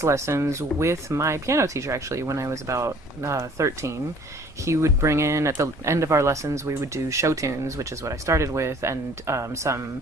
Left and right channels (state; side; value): normal; both; correlation 0.54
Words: lessons with my piano teacher actually when I was about 13. He would bring in, at the end of our lessons, we would do show tunes, which is what I started with, and some